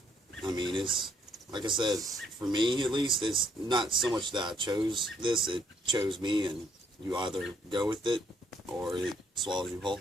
I mean, it's, like I said, for me at least, it's not so much that I chose this, it chose me, and you either go with it, or it swallows you whole.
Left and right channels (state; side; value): normal; both; correlation 0.68